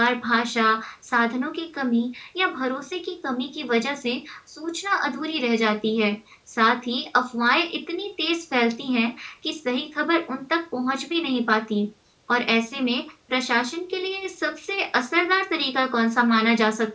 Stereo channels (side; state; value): both; identical; correlation 1.00